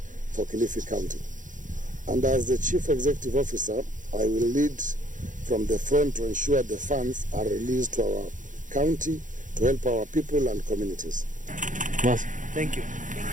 for Kilifi County. And as the Chief Executive Officer, I will lead from the front to ensure the funds are released to our county to help our people and communities. Yes. Thank you.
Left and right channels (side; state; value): left; late; 0.37 ms